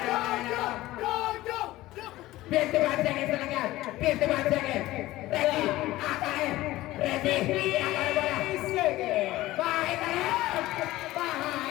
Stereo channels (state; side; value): quieter; right; 17.0 dB